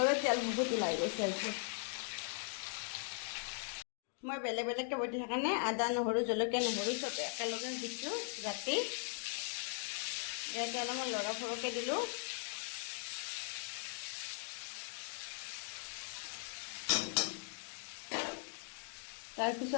তেল বহুত ওলাই গৈছে আজি মই বেলেগ বেলেগকৈ বটি সেইকাৰণে আদা নহৰু জলকীয়া নহৰু চব একেলগে দিছোঁ ৰাতি ইয়াতে অলপমান লৰা সৰহকৈ দিলোঁ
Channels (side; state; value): right; silent; 51 dB below the other